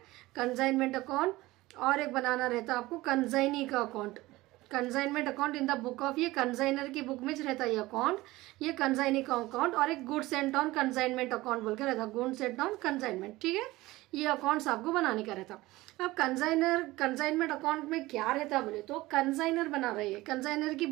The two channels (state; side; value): quieter; left; 19.0 dB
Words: कंसाइनमेंट अकाउंट, और एक बनाना रहता आपको कंसाइनी का account. Consignment account in the book of, ये कंसाइनर की बुक में रहता है ये अकाउंट, ये कंसाइनी का अकाउंट, और एक goods and on consignment account बोल के रहता, गुड्स एंड ऑन कंसाइनमेंट, ठीक है. ये अकाउंट्स आपको बनाने का रहता. अब कंसाइनमेंट अकाउंट में क्या रहता बोले तो, कंसाइनर बना रही है, कंसाइनर की